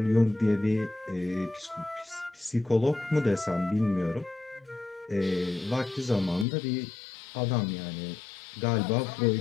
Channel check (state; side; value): drops out; right; at 6.5 s